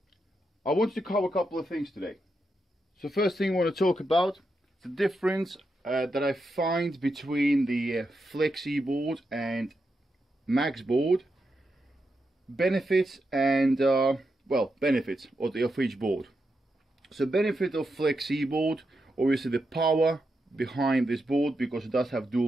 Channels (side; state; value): both; normal; correlation 0.85